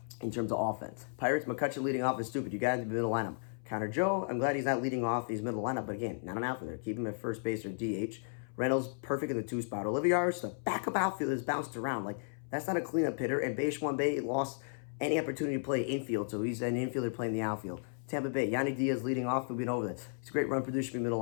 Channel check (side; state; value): right; silent; 55 dB below the other